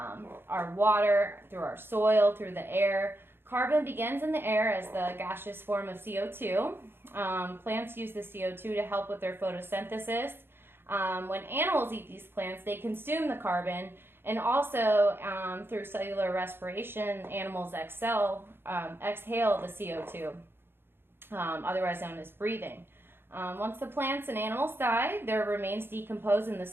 water, through our soil, through the air. Carbon begins in the air as the gaseous form of CO2. Plants use the CO2 to help with their photosynthesis. When animals eat these plants, they consume the carbon, and also through cellular respiration, animals exhale the CO2, otherwise known as breathing. Once the plants and animals die, their remains decompose in the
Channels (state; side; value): late; left; 0.11 ms